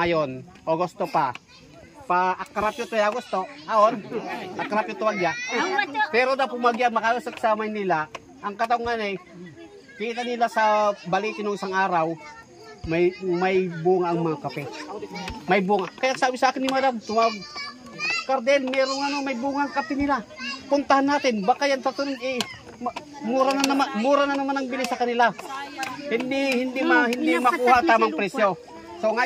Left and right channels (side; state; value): both; identical; correlation 1.00